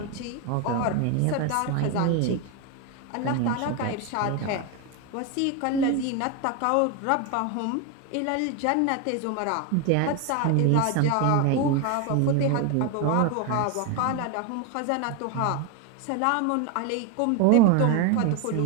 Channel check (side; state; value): both; different; correlation 0.02